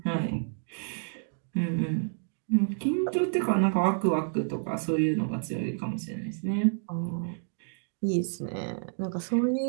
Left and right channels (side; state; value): left; silent; digital silence